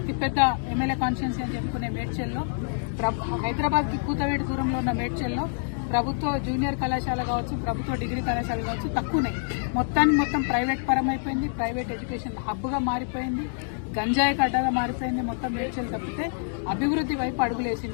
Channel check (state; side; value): silent; right; digital silence